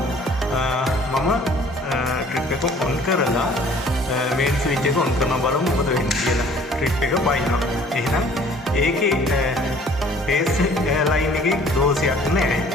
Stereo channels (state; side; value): normal; both; correlation 0.54